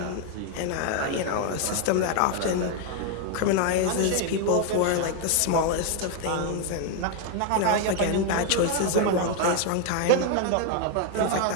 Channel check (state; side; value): different; both; correlation 0.00